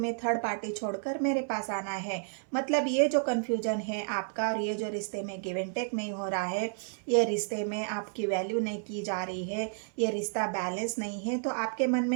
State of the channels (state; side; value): silent; left; 57 dB below the other